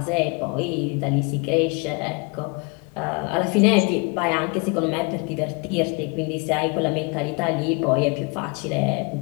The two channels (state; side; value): quieter; right; 31.1 dB